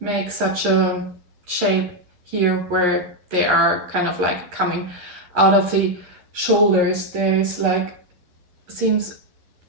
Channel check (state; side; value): late; left; 11 ms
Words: make such a shape here where they are kind of like coming out of the shoulders. There's like, it seems